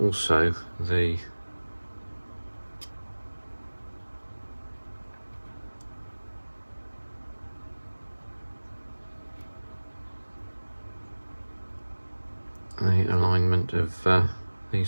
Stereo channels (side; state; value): both; inverted; correlation -1.00